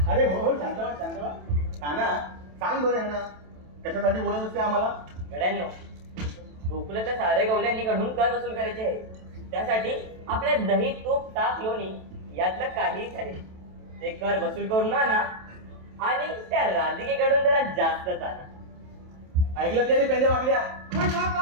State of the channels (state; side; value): late; left; 27 ms